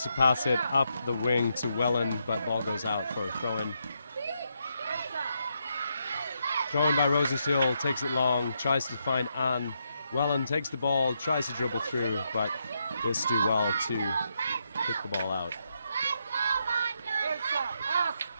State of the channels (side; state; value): both; inverted; correlation -0.80